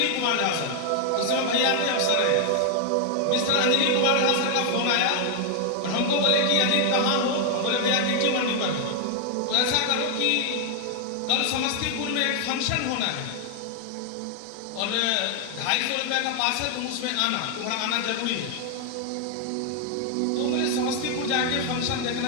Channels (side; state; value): both; different; correlation 0.00